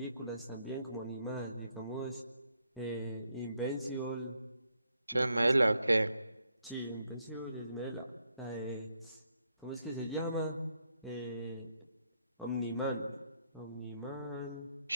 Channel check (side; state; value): both; inverted; correlation -0.75